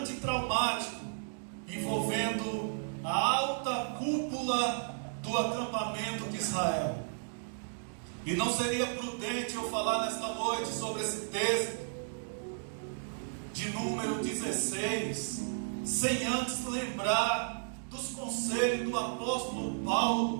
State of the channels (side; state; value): left; silent; digital silence